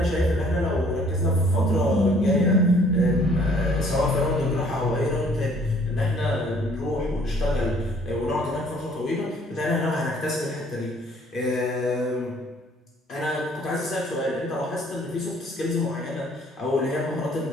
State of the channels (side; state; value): both; normal; correlation 0.59